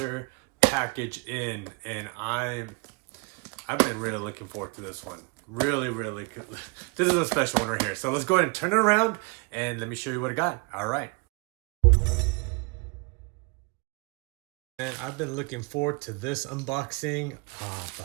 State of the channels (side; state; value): left; quieter; 29.6 dB